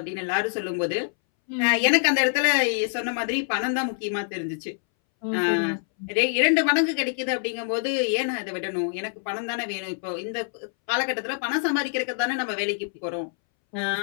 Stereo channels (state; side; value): silent; right; 61 dB below the other